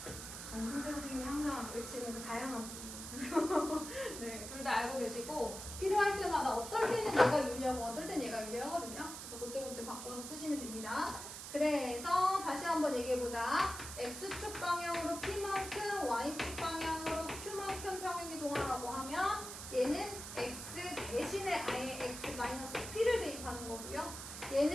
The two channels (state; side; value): noise; right; hiss, 9 dB below the sound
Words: 정승재 선생님이 항상 외치는 그 다양한 부분. 네, 둘 다 알고 계시고 필요할 때마다 어떨 때는 얘가 유리하고 어떨 때는 얘가 유리하거든요. 그래서 그때그때 바꿔서 쓰시면 됩니다. 그래서 다시 한번 얘기해보자. x축 방향으로 p만큼 y축 방향으로 q만큼 평행이동하라고 하면 얘는 x 대신에 아예 x 마이너스 p를 대입하는 거고요.